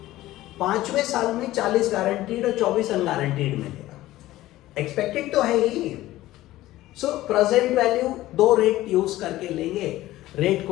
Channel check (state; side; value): quieter; right; 16.0 dB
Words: 5वें साल में 40 गारंटीड और 24 अनगारंटीड मिलेगा, एक्सपेक्टेड तो है ही। So present value 2 rate use करके लेंगे, रेट